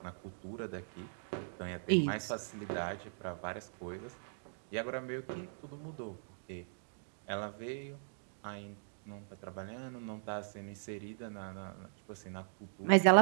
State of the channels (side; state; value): left; silent; digital silence